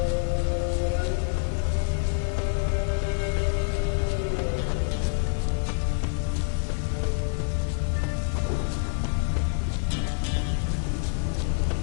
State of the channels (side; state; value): right; silent; 60 dB below the other